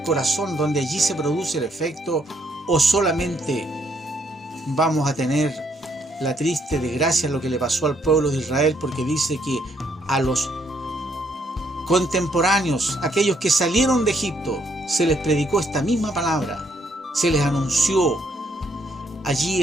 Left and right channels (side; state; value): both; normal; correlation 0.71